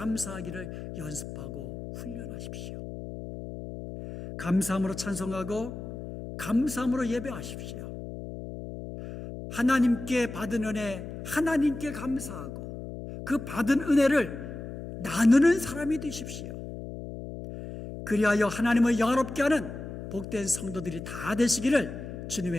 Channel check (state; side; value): noise; left; hum, 9 dB below the sound